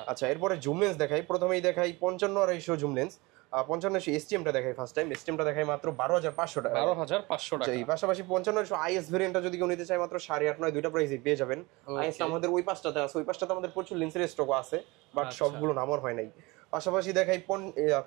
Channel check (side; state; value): left; quieter; 23.8 dB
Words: আচ্ছা, এরপরে জুম লেন্স দেখাই, প্রথমেই দেখাই 55 জুম লেন্স, 55 STMটা দেখাই ফার্স্ট টাইম, STMটা দেখাই মাত্র 12500 টাকা, 12500 টাকা। এই পাশাপাশি 55 IS ভেরিয়েন্টটা যদি কেউ নিতে চায় মাত্র 8.5, 9 দুইটা প্রাইসই পেয়ে যাবেন। IS আমাদের ওই পাঁচটাতে আছে, ওই পাঁচটাতে আমাদের প্রচুর লেন্সের স্টক আছে, বাট সবগুলো নামার হয় নাই। পাশাপাশি দেখাই